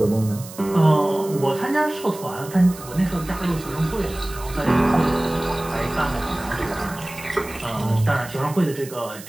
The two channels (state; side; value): noise; right; hiss, 16 dB below the sound